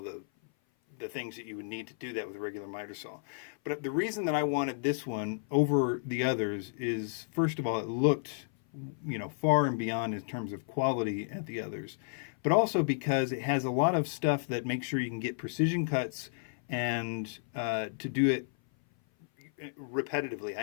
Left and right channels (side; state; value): right; silent; 56 dB below the other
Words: things that you would need to do that with a regular miter saw. But the reason that I wanted this one over the others is, first of all, it looked, far and beyond in terms of quality at the others, but also because it has a lot of stuff that makes sure you can get precision cuts and to do it repetitively.